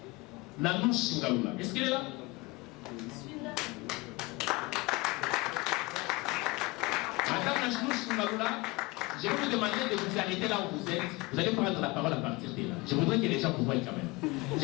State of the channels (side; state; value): right; quieter; 23.4 dB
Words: Nanouche Ngaoula. Est-ce qu'elle est là? Madame Nanouche Ngaoula, je vais vous demander de vous arrêter là où vous êtes. Vous allez prendre la parole à partir de là. Je voudrais que les gens vous voient quand même.